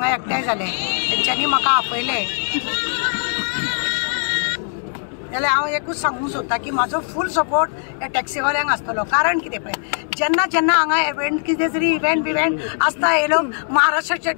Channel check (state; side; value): silent; right; digital silence